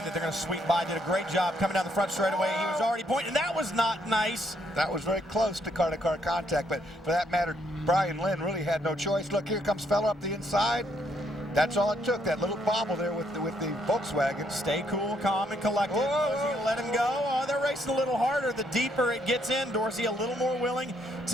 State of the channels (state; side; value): normal; both; correlation 0.72